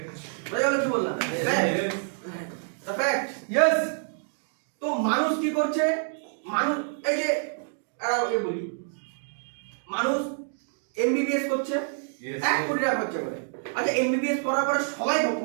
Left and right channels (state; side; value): silent; left; digital silence